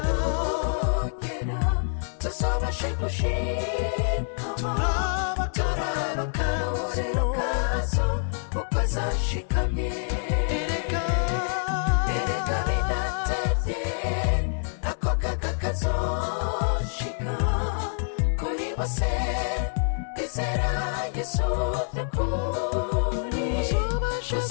nugera tuzabashe gushikama, turaba akarorero kazo uko zashikamye. Erega bidatevye ako kaga kazoshika kuri bose bizera yesu by'ukuri.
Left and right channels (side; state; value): right; silent; digital silence